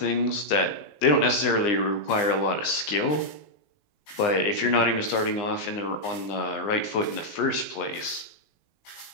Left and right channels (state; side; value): late; right; 20 ms